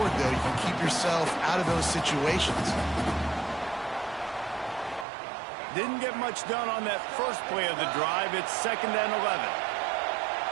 though, you can keep yourself out of those situations. Didn't get much done on that first play of the drive. It's 2nd and 11.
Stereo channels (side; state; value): left; drops out; at 5.1 s